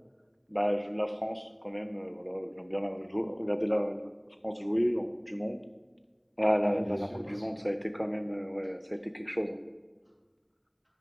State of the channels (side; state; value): both; identical; correlation 1.00